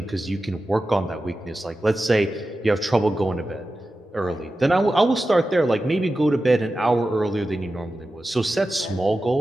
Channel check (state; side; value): normal; both; correlation 0.93